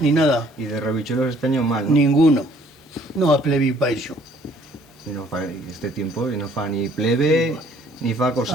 ni nada. Y de rebichuelos este año mal, ¿no? Ninguno. No a plebi pa eso. Y no fa este tiempo, y no fa ni plebe, ni fa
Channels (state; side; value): normal; both; correlation 0.60